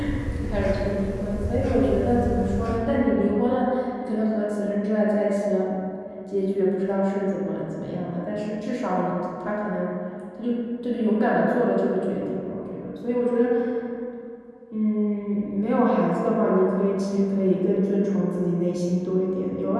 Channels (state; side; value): identical; both; correlation 1.00